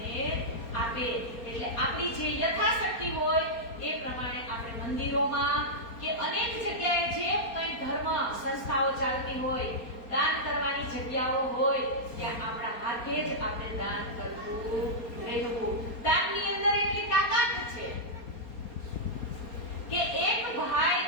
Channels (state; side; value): late; right; 4.3 ms